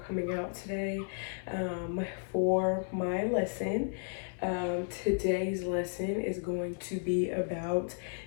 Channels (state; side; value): silent; right; 55 dB below the other